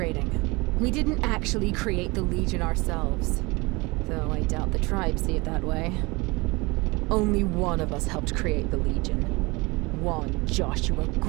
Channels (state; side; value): quieter; left; 24.9 dB